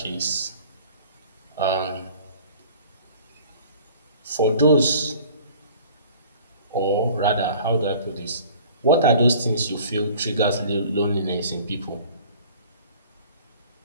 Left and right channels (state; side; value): inverted; both; correlation -0.48